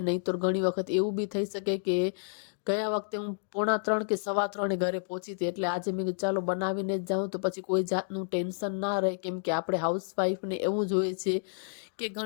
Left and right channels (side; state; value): right; silent; digital silence